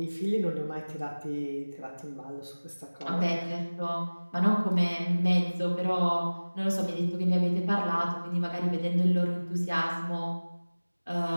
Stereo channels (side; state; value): both; inverted; correlation -1.00